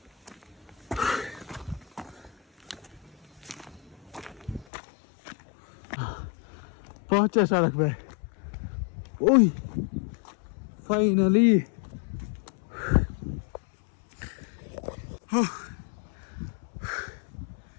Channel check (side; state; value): right; drops out; at 4.7 s